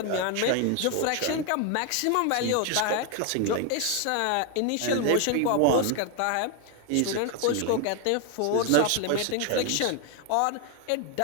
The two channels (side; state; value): both; different; correlation 0.01